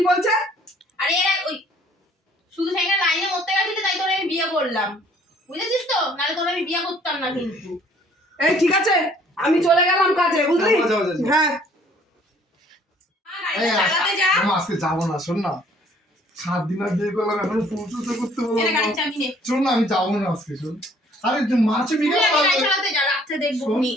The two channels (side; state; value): both; normal; correlation 0.59